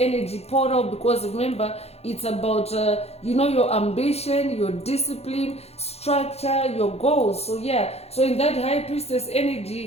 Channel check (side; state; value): right; late; 0.30 ms